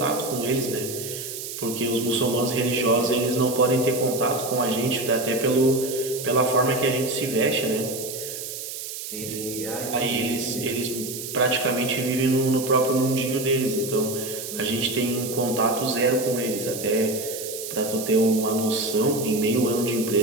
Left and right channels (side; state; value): right; noise; hiss, 8 dB below the sound